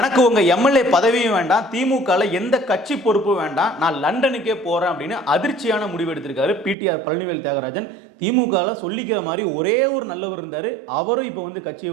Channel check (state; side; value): drops out; left; at 6.8 s